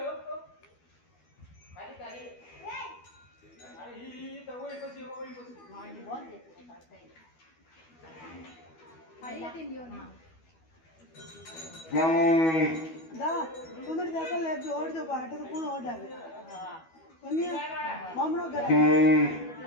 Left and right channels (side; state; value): right; late; 12 ms